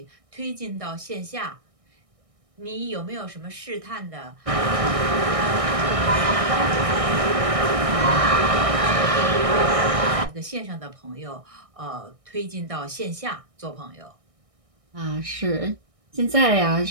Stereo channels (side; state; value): left; late; 1.6 ms